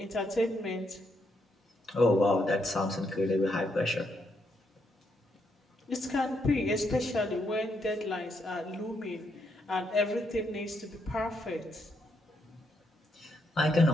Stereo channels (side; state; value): both; normal; correlation 0.77